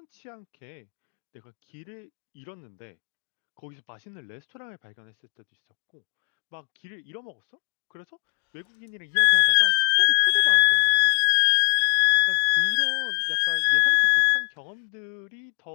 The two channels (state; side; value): silent; right; digital silence